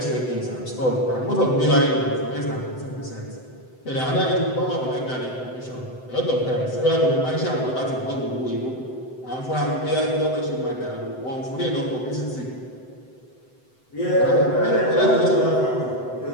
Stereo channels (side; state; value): right; late; 7.9 ms